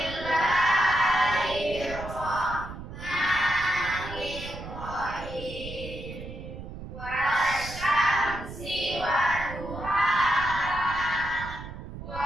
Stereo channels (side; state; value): right; noise; rumble, 11 dB below the sound